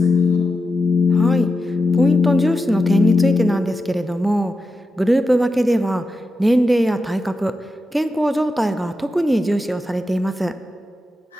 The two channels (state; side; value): normal; both; correlation 0.90